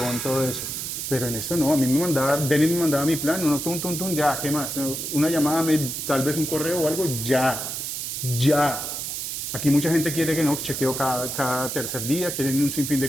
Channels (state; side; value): noise; right; hiss, 4 dB below the sound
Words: todo eso. Pero en esto no, a mí Denis me mandaba mi plan, uno, tum, ya, ¿qué más? Una llamada, tal vez un correo o algo, ya. Aquí mucha gente quiere que no, chequeo cada tercer día, quieren un sinfín